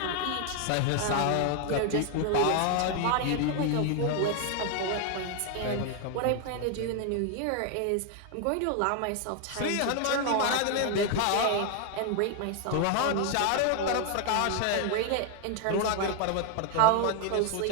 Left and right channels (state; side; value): different; both; correlation 0.00